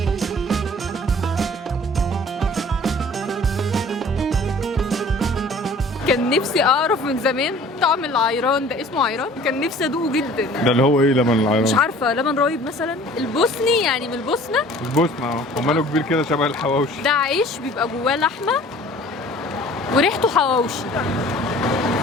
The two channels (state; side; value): normal; both; correlation 0.49